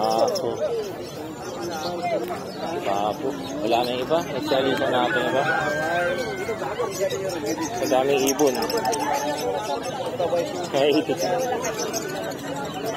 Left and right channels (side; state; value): both; identical; correlation 1.00